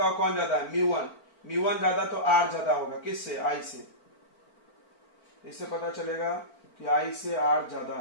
कौन ज्यादा है, म्यू 1। म्यू 1 ज्यादा तो आर ज्यादा होगा, किससे, आई से। इससे पता चलेगा कि आई से आर ज्यादा,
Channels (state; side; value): late; right; 4.4 ms